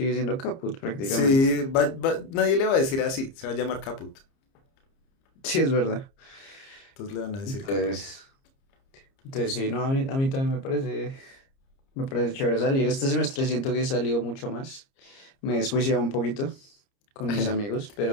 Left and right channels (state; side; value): late; right; 30 ms